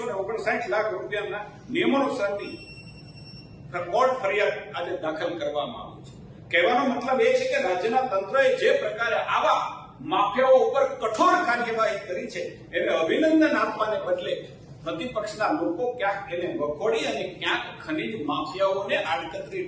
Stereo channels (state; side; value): identical; both; correlation 1.00